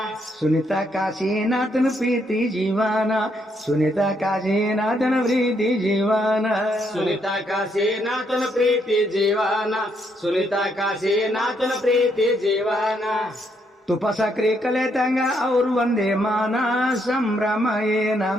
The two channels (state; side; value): normal; both; correlation 0.74